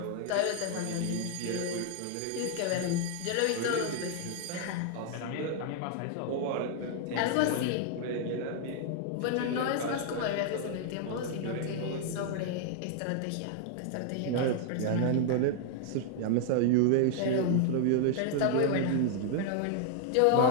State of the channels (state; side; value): different; both; correlation 0.00